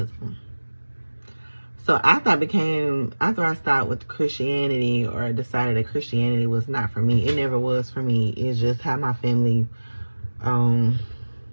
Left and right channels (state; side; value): inverted; both; correlation -1.00